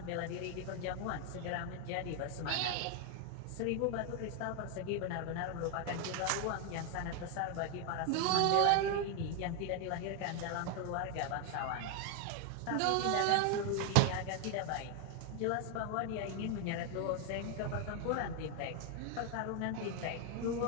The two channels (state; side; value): different; both; correlation 0.01